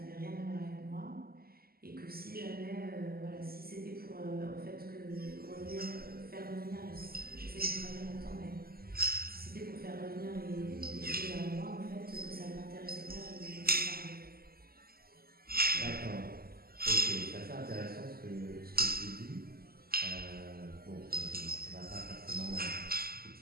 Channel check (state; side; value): late; left; 0.44 ms